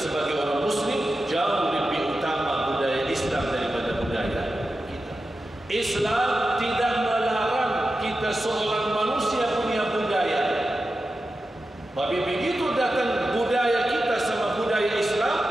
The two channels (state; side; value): normal; both; correlation 0.92